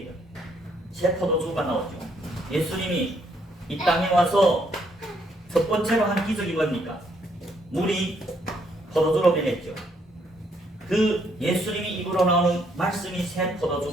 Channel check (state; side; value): normal; both; correlation 0.71